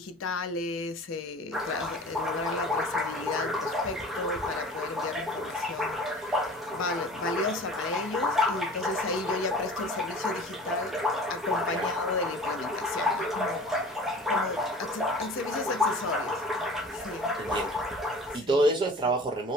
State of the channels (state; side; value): normal; both; correlation 0.42